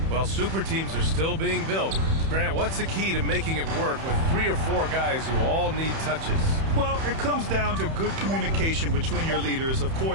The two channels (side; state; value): left; late; 31 ms